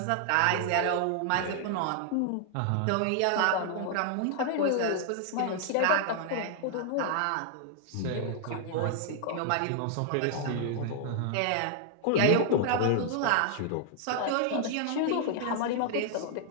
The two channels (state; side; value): different; both; correlation 0.00